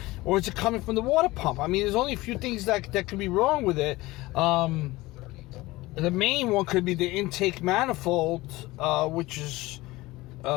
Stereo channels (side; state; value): right; quieter; 19.8 dB